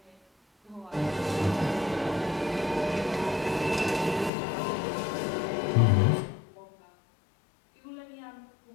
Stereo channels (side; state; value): right; drops out; at 4.3 s